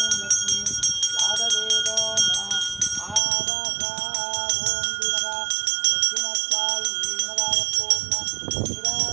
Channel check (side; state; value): left; drops out; at 3.2 s